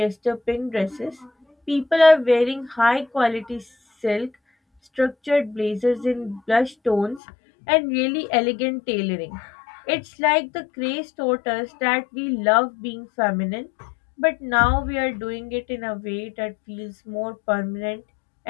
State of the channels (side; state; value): right; drops out; at 7.2 s